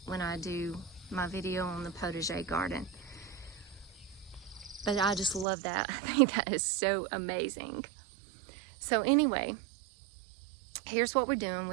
when I do my video on the potager garden. But I just love that. I think that is so amazing. So anyway, here's what we're doing.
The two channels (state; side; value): drops out; left; at 5.5 s